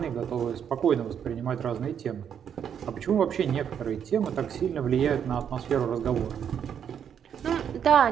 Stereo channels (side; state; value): left; quieter; 8.4 dB